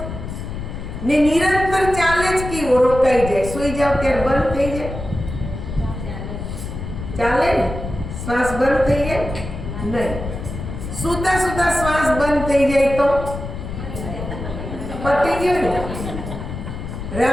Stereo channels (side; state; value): left; noise; rumble, 7 dB below the sound